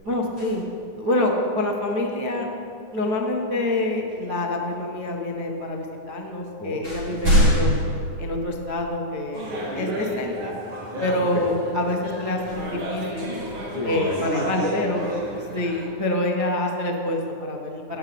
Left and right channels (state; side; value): late; left; 9.7 ms